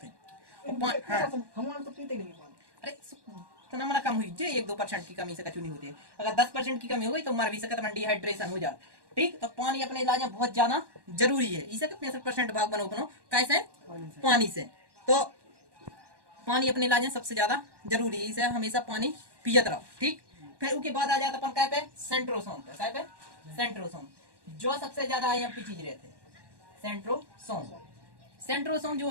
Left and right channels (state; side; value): late; left; 1.1 ms